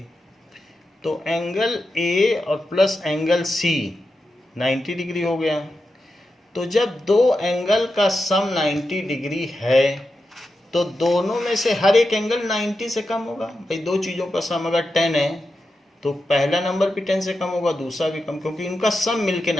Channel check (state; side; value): normal; both; correlation 0.89